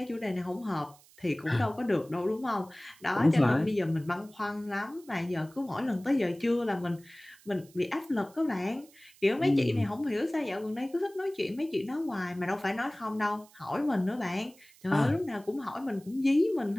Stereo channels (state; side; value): noise; right; hiss, 26 dB below the sound